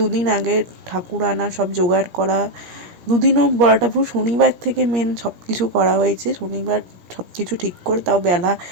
আগে ঠাকুর আনা, সব জোগাড় করা। দুদিনও বলাটা ভুল, শনিবার থেকে মেন সব কিছু করা হয়েছে। শনিবার সব কিছু ঠিক করে, তাও বেলা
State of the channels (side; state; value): left; late; 17 ms